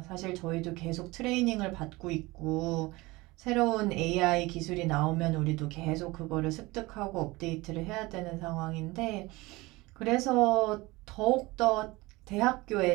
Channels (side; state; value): left; quieter; 21.8 dB